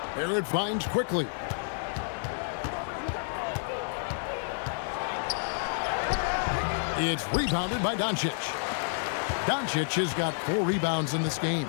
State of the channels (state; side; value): silent; right; digital silence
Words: Barrett finds quickly. It's rebounded by Doncic. Doncic has got 4 rebounds in this game.